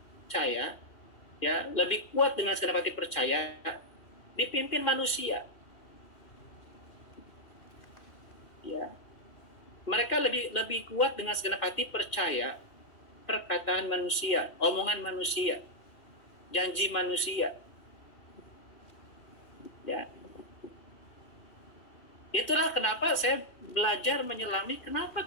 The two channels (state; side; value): late; right; 2.5 ms